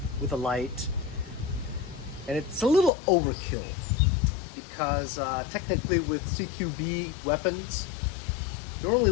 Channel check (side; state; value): right; drops out; at 2.9 s